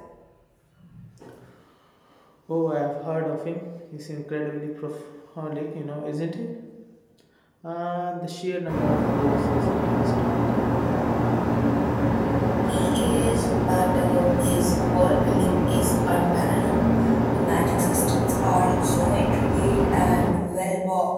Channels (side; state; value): both; identical; correlation 1.00